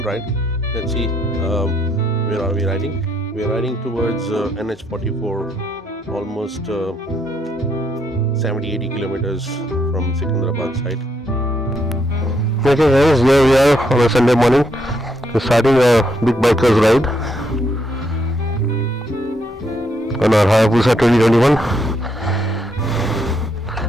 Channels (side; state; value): both; normal; correlation 0.75